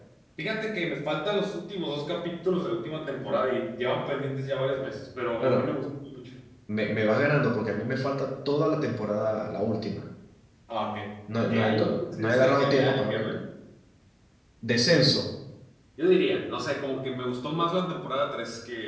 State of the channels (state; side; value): identical; both; correlation 1.00